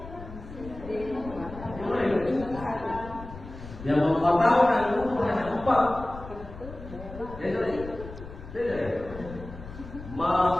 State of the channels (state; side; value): noise; left; rumble, 14 dB below the sound